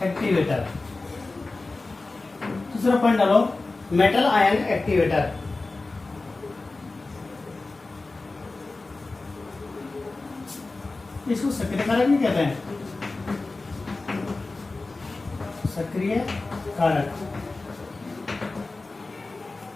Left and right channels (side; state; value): right; quieter; 3.4 dB